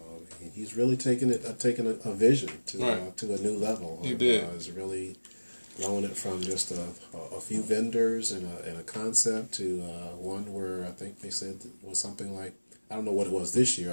he's really taken a vision to a new level. He did. He's really growing it from just a few vendors and a concept to one where I think they said it was something like, I don't know what it was this year.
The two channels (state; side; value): inverted; both; correlation -1.00